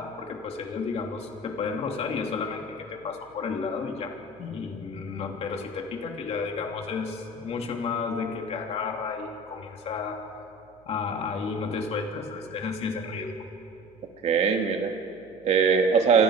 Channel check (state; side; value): noise; left; hum, 28 dB below the sound